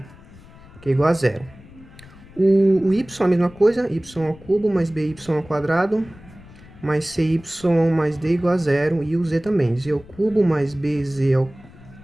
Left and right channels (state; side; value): noise; left; rumble, 21 dB below the sound